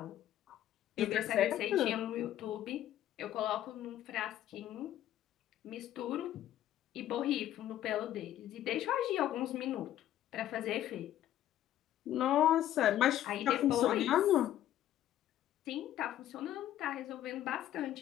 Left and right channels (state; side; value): quieter; right; 12.4 dB